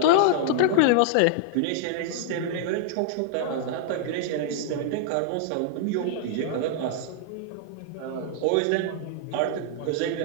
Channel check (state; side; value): different; both; correlation -0.01